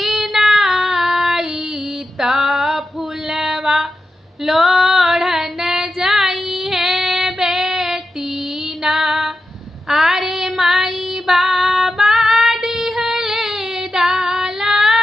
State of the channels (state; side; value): normal; both; correlation 0.89